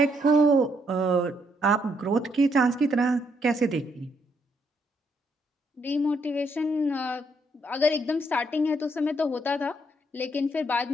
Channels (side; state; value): both; normal; correlation 0.73